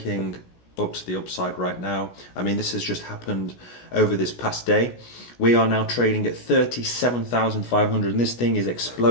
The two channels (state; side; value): late; right; 17 ms